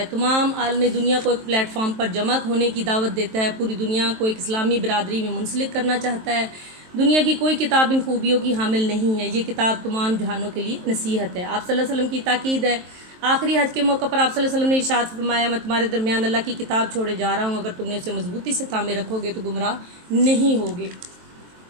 تمام عالم دنیا کو ایک پلیٹ فارم پر جمع ہونے کی دعوت دیتا ہے، پوری دنیا کو ایک اسلامی برادری میں منسلک کرنا چاہتا ہے۔ دنیا کی کوئی کتاب ان خوبیوں کی حامل نہیں ہے، یہ کتاب تمام جہانوں کے لیے نصیحت ہے۔ آپ صلی اللہ علیہ وسلم کی تاکید ہے۔ آخری حج کے موقع پر آپ صلی اللہ علیہ وسلم نے ارشاد فرمایا، میں تمہارے درمیان اللہ کی کتاب چھوڑے جا رہا ہوں، اگر تم نے اسے مضبوطی سے تھامے رکھو گے تو گمراہ نہیں ہوگے۔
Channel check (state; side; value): late; left; 23 ms